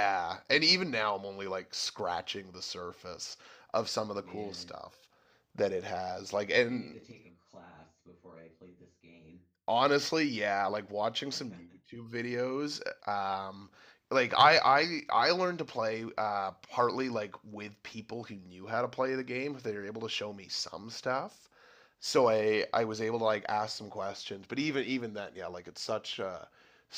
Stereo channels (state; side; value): identical; both; correlation 1.00